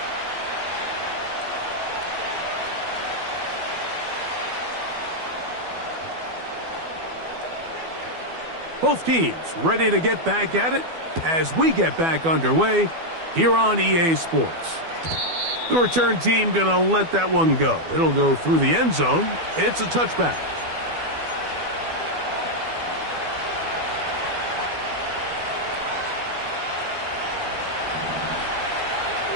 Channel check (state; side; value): late; left; 12 ms